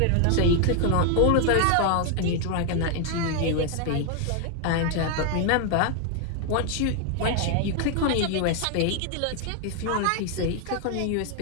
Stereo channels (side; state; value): both; different; correlation 0.00